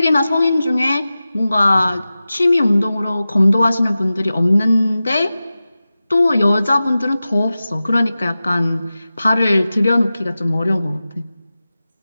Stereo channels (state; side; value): inverted; both; correlation -0.95